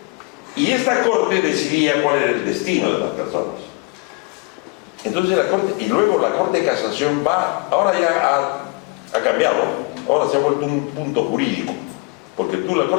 y esta Corte decidía cuál era el destino de las personas. Entonces la Corte, y luego la Corte de Casación va, ahora ya ha cambiado, ahora se ha vuelto un punto jurídico, porque la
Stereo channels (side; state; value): right; quieter; 27.7 dB